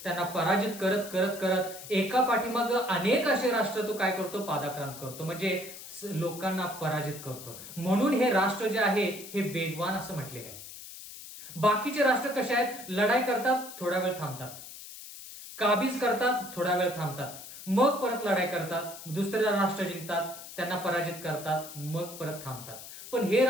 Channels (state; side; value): noise; left; hiss, 13 dB below the sound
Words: त्यांना पराजित करत करत करत एका पाठीमागं अनेक असे राष्ट्र तो काय करतो? पादाक्रांत करतो, म्हणजे लोकांना पराजित करतो. म्हणून हे राष्ट्र जे आहे हे वेगवान असं म्हटलेलं आहे. बाकीचे राष्ट्र कसे आहेत? लढाई करतात, थोडा वेळ थांबतात, काबीज करतात, थोडा वेळ थांबतात, मग परत लढाई करतात, दुसरे राष्ट्र जिंकतात, त्यांना पराजित करतात, मग परत थांबतात. पण हे